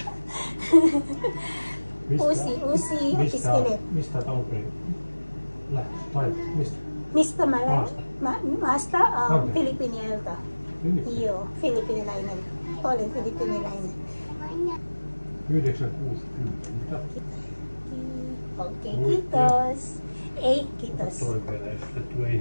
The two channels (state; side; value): inverted; both; correlation -1.00